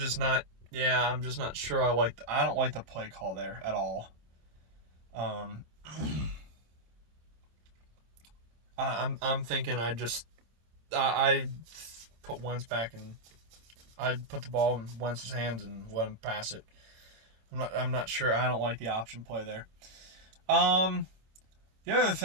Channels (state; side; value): late; left; 26 ms